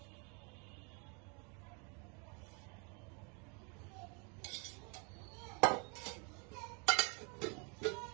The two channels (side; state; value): left; quieter; 34.5 dB